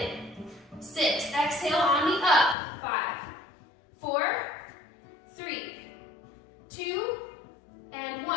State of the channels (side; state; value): right; drops out; at 2.6 s